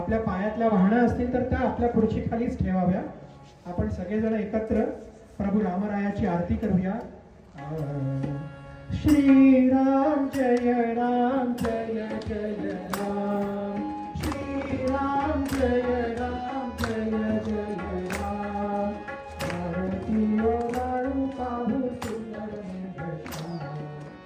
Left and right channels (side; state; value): both; identical; correlation 1.00